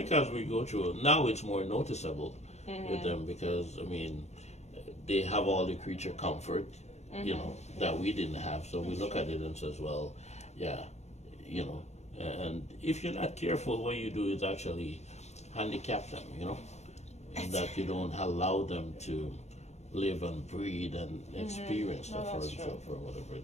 as we go through, now it's more noticeable with them because, I mean, they have all the creature comfort, you know, that we didn't have. So we look at it and says, well, yeah, you know, and if you're not careful, what you do is actually handicap them, you know, and that you don't allow them to live and breathe and experience stuff for whatever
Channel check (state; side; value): late; right; 0.32 ms